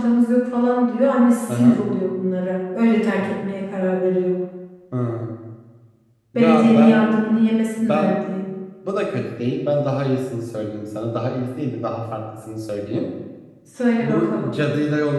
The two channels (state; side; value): identical; both; correlation 1.00